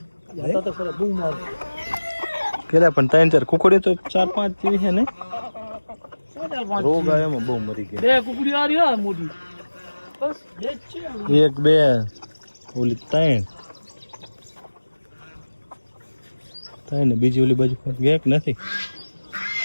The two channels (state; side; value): inverted; both; correlation -1.00